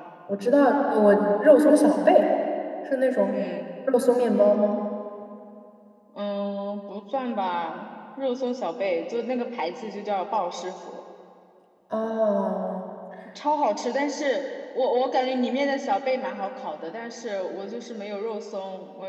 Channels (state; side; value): identical; both; correlation 1.00